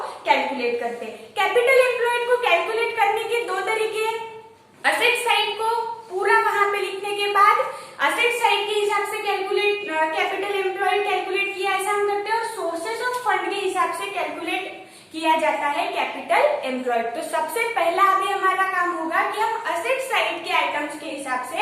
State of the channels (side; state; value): both; identical; correlation 1.00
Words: कैलकुलेट करते हैं। कैपिटल एम्प्लॉयड को कैलकुलेट करने के दो तरीके हैं। असेट साइड को पूरा वहां पे लिखने के बाद असेट साइड के हिसाब से कैपिटल एम्प्लॉयड कैलकुलेट किया, ऐसा हम करते हैं। और सोर्सेस ऑफ फंड के हिसाब से कैलकुलेट किया जाता है कैपिटल एम्प्लॉयड। तो सबसे पहला अभी हमारा काम होगा कि हम असेट साइड के आइटम्स के हिसाब